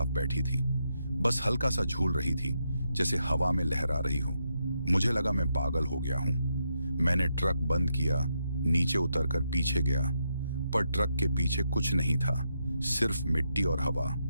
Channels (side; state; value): both; inverted; correlation -0.82